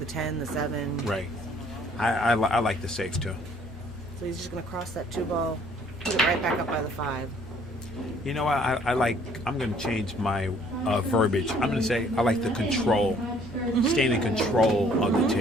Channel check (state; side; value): normal; both; correlation 0.60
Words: 10, the 7. Right. I like the safe, too. So he's just going to cross that 2 ball, put it right back up by the 5. You know what? I'm going to change my verbiage. I'm going to say I like the control, staying in control of the